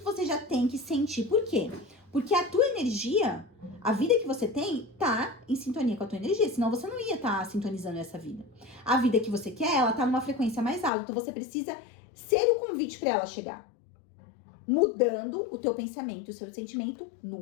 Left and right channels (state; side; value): drops out; right; at 10.9 s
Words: você já tem que sentir. Por quê? Porque a tua energia, a vida que você tem, tá em sintonia com a tua energia. Senão você não ia estar sintonizando essa vida. A vida que você quer, ela tá numa frequência mais alta. Então você precisa ser o convite para ela chegar. Mudando o teu pensamento, o seu sentimento